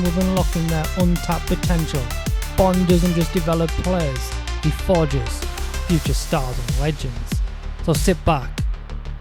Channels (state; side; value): identical; both; correlation 1.00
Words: with unlocking their untapped potential, Bond doesn't just develop players, he forges future stars and legends. So sit back,